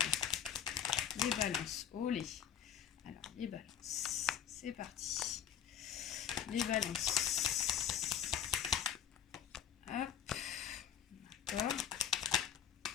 Les balances, olé. Alors, les balances, c'est parti. Les balances. Hop, d'accord.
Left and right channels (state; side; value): quieter; right; 8.9 dB